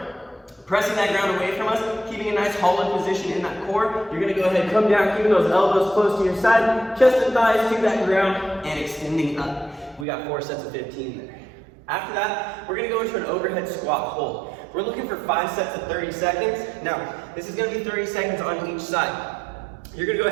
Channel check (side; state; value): left; drops out; at 10.1 s